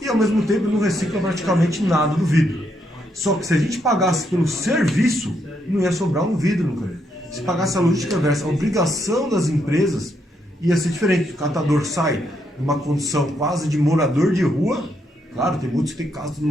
e ao mesmo tempo não recicla praticamente nada do vidro. Só que se a gente pagasse pelo serviço, não ia sobrar um vidro no canto. Se pagasse a logística reversa, a obrigação das empresas ia ser diferente. O catador sai numa condição quase de morador de rua, claro, tem muitos que têm casa,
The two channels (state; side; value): normal; both; correlation 0.77